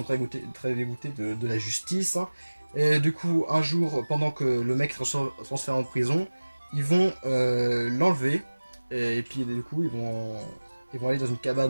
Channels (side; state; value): both; inverted; correlation -1.00